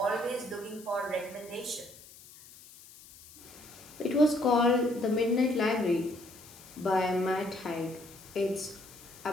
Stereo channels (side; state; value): left; noise; hiss, 20 dB below the sound